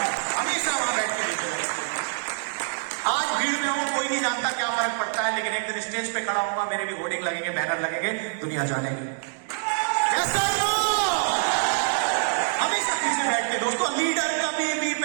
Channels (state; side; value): silent; left; digital silence